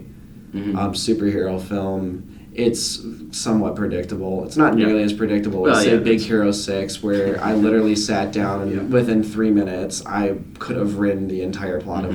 Mhm. superhero film, it's somewhat predictable. It's not Yeah. nearly as predictable Well, as say yeah, Big that's- Hero 6, where I literally sat down and Yeah. within 3 minutes I could have written the entire plot Mhm.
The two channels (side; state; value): both; identical; correlation 1.00